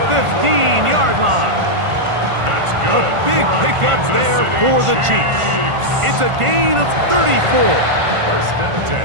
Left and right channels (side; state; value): left; late; 1.5 ms